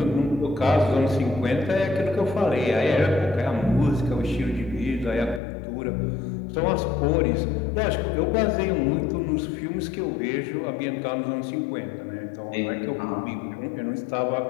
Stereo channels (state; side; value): drops out; right; at 5.4 s